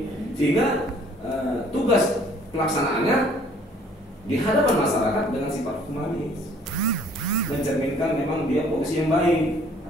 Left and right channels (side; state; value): both; normal; correlation 0.57